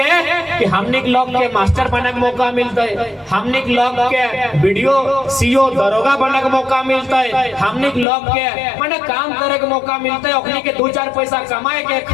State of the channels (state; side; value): drops out; right; at 8.1 s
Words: कि हमनी के लोग के मास्टर बने के मौका मिलते हमनी के लोग के वीडियो सीओ दरोगा बने के मौका मिलते हमनी के लोग के माने काम करे के मौका मिलते ओखनी के 2-4 पैसा कमाए के